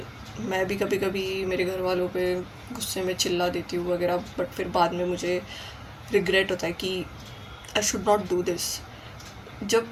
मैं भी कभी कभी मेरे घर वालों पे गुस्से में चिल्ला देती हूँ वगैरह, बट फिर बाद में मुझे रिग्रेट होता है कि I should not do this. जब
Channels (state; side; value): identical; both; correlation 1.00